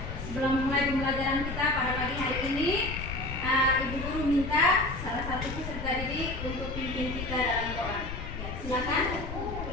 Sebelum mulai pembelajaran kita pada pagi hari ini, Ibu Guru minta salah satu peserta didik untuk pimpin kita dalam doa. Ya, silakan.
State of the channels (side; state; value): left; noise; rumble, 7 dB below the sound